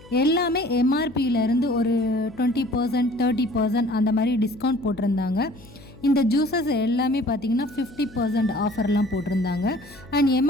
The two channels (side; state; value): left; noise; hum, 22 dB below the sound